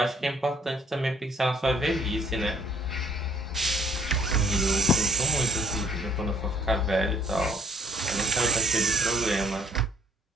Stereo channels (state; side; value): normal; both; correlation 0.60